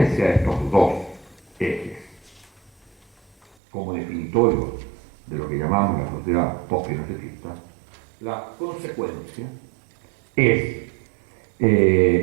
de estos dos ejes como definitorio de lo que llamamos la sociedad post-pinochetista, la consecuencia es,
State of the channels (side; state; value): left; drops out; at 3.6 s